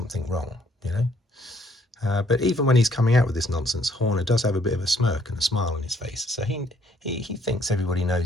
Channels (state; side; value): normal; both; correlation 0.66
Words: wrong, you know. But even when he's coming out with this nonsense, Horner does have a bit of a smirk and a smile on his face. So he thinks everybody